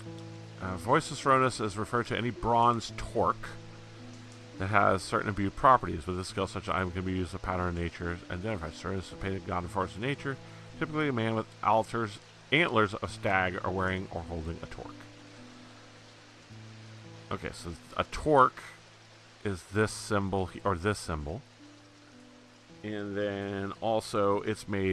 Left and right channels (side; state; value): both; identical; correlation 1.00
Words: Voice of Soronos is referred to any bronze torque that has certain imbued properties. With this skill, such an item can be used as a pattern of nature. Identified Soronos is a painted god and force of nature. Typically a man with antlers of stag are wearing or holding a torque. Okay, so a torque is this symbol, or this symbol. And then also it's